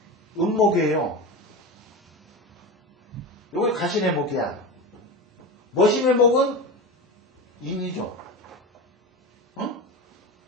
음목이에요. 요게 가신의 목이야. 머신의 목은 인이죠. 응?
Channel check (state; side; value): normal; both; correlation 0.25